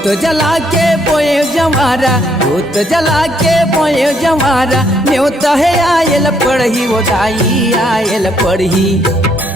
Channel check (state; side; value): normal; both; correlation 0.71